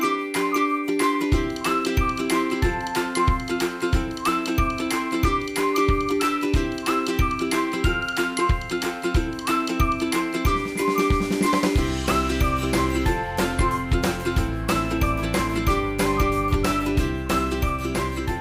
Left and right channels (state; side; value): identical; both; correlation 1.00